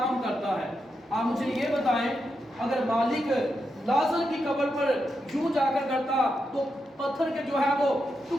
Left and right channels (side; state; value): both; normal; correlation 0.85